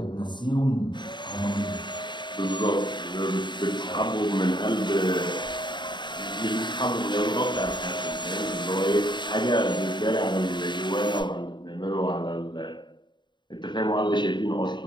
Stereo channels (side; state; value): right; late; 0.22 ms